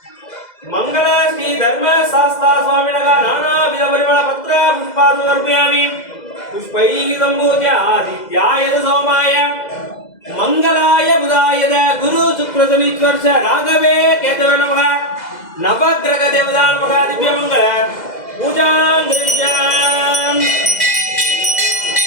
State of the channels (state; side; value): late; right; 2.0 ms